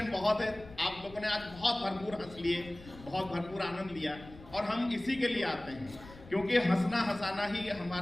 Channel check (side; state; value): left; noise; rumble, 18 dB below the sound